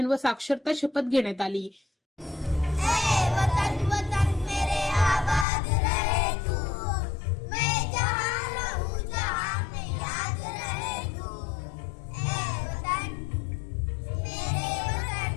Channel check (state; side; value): drops out; right; at 5.5 s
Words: व साक्षरता शपथ घेण्यात आली।